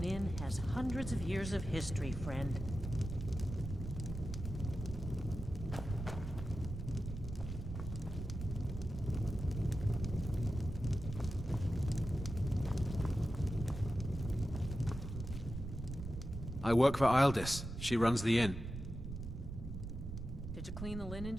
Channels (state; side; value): noise; right; rumble, 7 dB below the sound